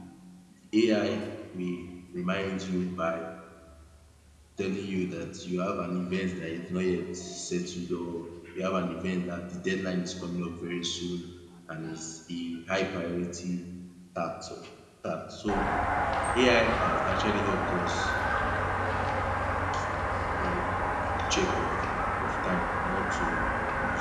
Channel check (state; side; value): identical; both; correlation 1.00